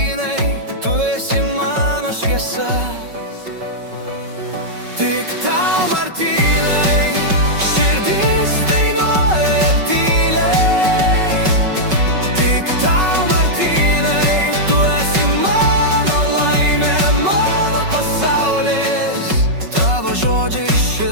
tu esi mano šviesa. Tik tau, Martynai, širdis dainuoja tyliai. Tik tau, Martynai, tu esi mano laimė, mano pasaulis. Tavo žodžiai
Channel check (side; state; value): left; late; 5.3 ms